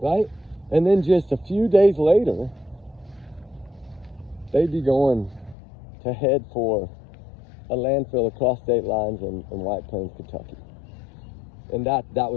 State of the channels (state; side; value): drops out; right; at 5.6 s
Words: Right? And then just a few days later, they'd be going to head for a landfill across state lines in White Plains, Kentucky. And that